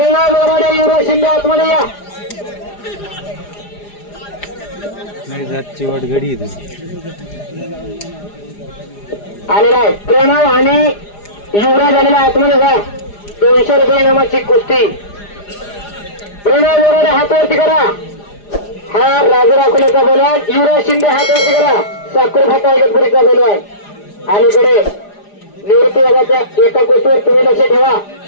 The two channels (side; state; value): right; late; 4.9 ms